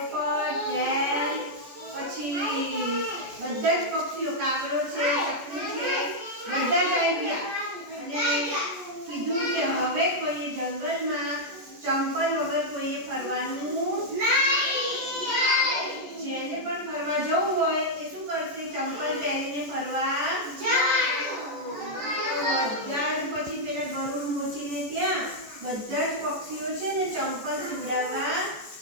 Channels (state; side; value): late; left; 14 ms